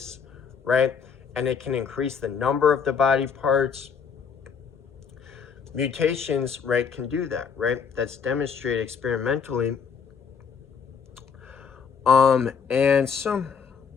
right? And it can increase the number of the body parts. Mutations, right, can do that, right? That's demonstrated experimentally. And so,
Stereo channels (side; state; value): right; quieter; 6.4 dB